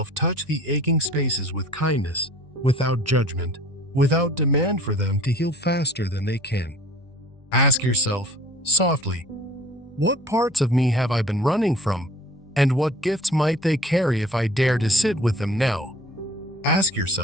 touch the aching spaces with kindness, without judgment, without demand for them to heal faster than they can. Ask yourself, softly, what parts of me have I been running from, and what gifts might they carry if I dare to sit with them now? Ask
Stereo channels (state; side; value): normal; both; correlation 0.48